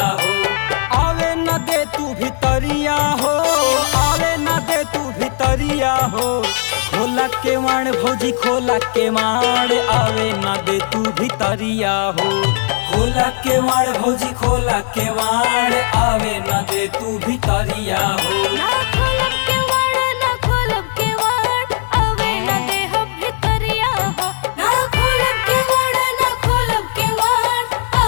हो। आवे न दे तू भितरिया हो, आवे न दे तू भितरिया हो। खोला के माण भौजी खोला के माण आवे न दे तू भितरिया हो। खोला के माण भौजी खोला के माण आवे न दे तू भितरिया हो। ना खोलब के वाड़ ना खोलब के वाड़ आवे न दे हम भितरिया हो। ना खोलब के वाड़ ना खोलब के वाड़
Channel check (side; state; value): right; silent; 58 dB below the other